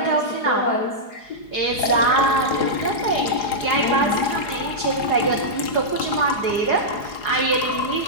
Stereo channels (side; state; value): right; late; 4.8 ms